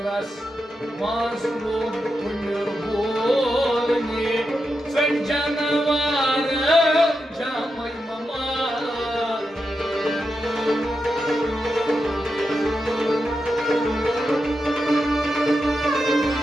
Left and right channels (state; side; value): normal; both; correlation 0.87